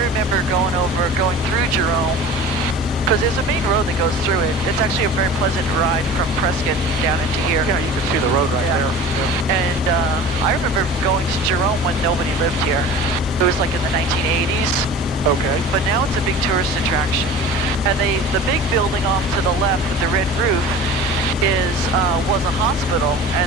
going through Jerome, because there's a main road that goes through it. It's actually a very pleasant ride from Prescott down into here. Yeah, you can see the road right there. Yeah. And I remember going to Jerome when nobody lived here. It was like in the 1980s. Okay. But now it's a big tourist attraction. And the big building off to the left with the red roof was a hospital,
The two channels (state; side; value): normal; both; correlation 0.39